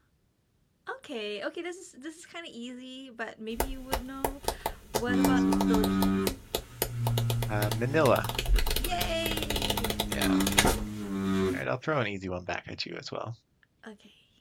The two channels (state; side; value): identical; both; correlation 1.00